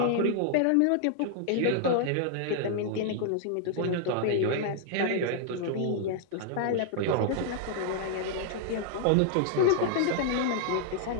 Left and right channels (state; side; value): different; both; correlation -0.01